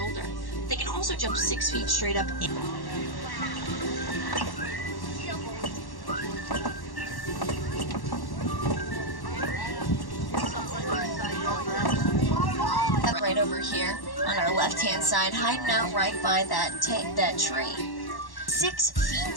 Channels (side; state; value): right; late; 1.1 ms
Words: They can also jump 6 feet straight up in. Right over here on our left-hand side, hiding out right by that tree. 6